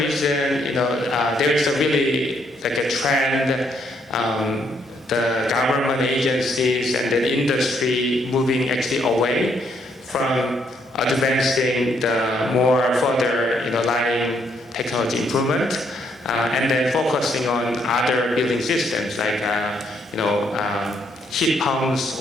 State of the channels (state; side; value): normal; both; correlation 0.72